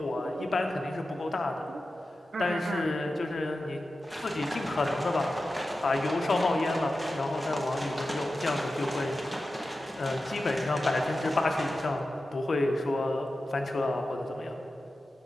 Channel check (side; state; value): both; normal; correlation 0.93